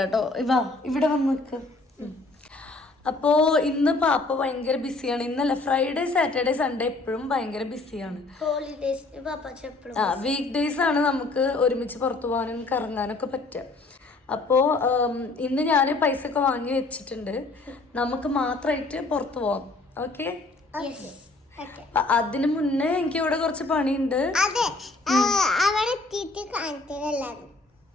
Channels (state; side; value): quieter; right; 3.3 dB